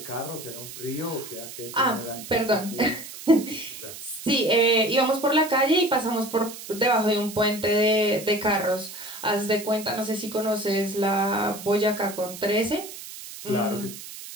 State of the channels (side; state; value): right; noise; hiss, 12 dB below the sound